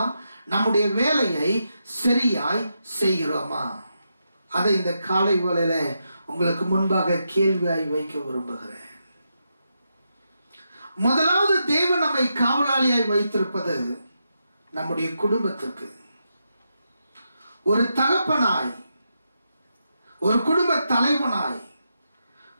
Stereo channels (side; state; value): both; inverted; correlation -0.84